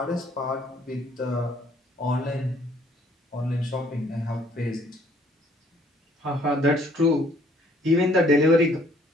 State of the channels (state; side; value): normal; both; correlation 0.62